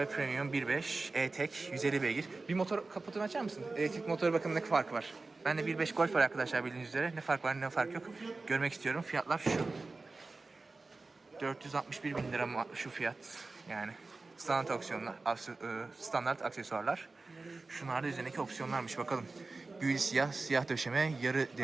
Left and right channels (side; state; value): left; quieter; 3.6 dB